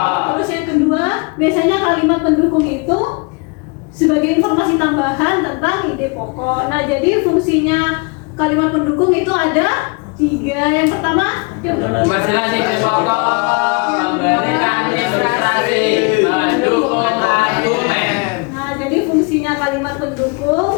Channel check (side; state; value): right; quieter; 30.9 dB